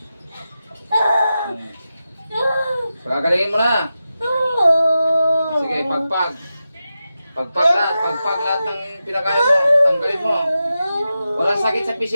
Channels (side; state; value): both; inverted; correlation -0.91